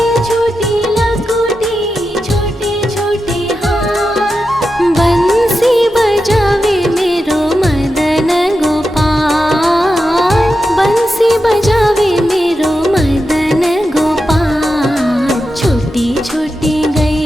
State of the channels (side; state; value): both; normal; correlation 0.89